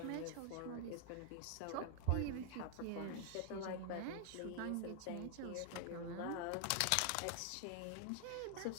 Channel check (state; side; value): different; both; correlation 0.00